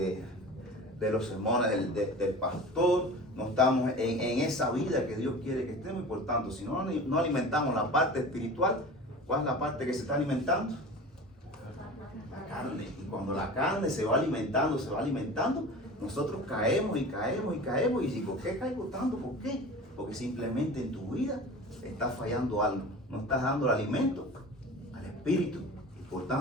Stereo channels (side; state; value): both; normal; correlation 0.36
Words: los sermones del pastor, no estamos en esa vida que Dios quiere que estemos. Y por tanto, si no alimentamos la parte espiritual, ¿cuál es la parte que se está alimentando? La carne. Y cuando la carne se va alimentando, nosotros caemos. ¿Y por qué caigo tanto? ¿Por qué? Porque simplemente en tu vida está fallando algo. No estás dando el alimento al espíritu. Y por